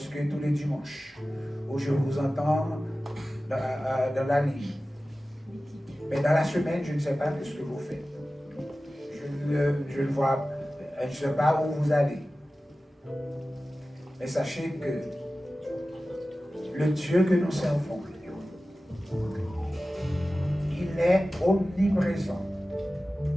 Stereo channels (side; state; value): both; normal; correlation 0.95